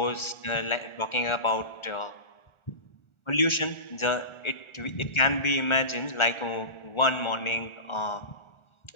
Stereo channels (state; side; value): late; right; 1.4 ms